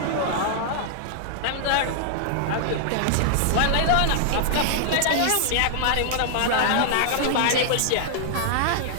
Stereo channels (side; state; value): both; different; correlation -0.01